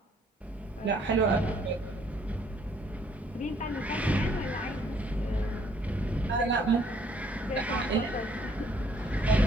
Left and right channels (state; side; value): normal; both; correlation 0.64